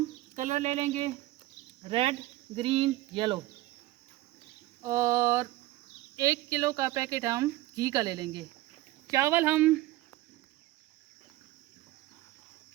कलर ले लेंगे, रेड, ग्रीन, येलो। और 1 किलो का पैकेट हम घी का ले लेंगे। चावल हम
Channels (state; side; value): quieter; left; 17.2 dB